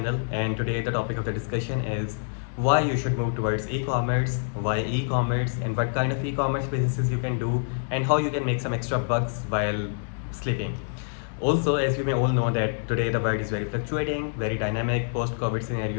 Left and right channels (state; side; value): silent; right; digital silence